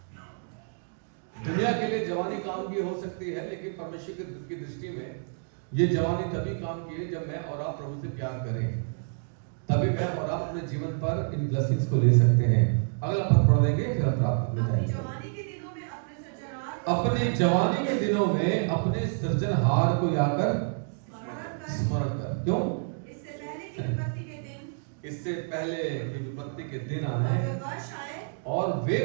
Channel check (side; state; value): left; silent; digital silence